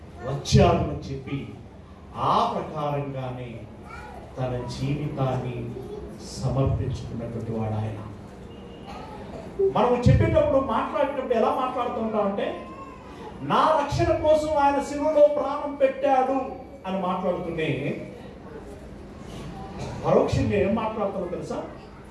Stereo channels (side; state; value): both; identical; correlation 1.00